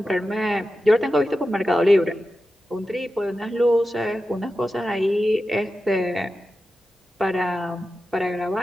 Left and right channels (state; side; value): normal; both; correlation 0.92